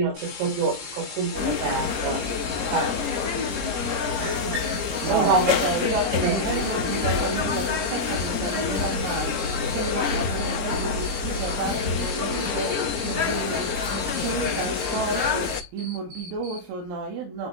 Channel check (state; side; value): late; left; 20 ms